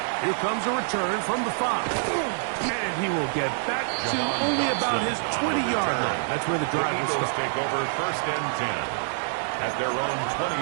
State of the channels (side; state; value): left; silent; digital silence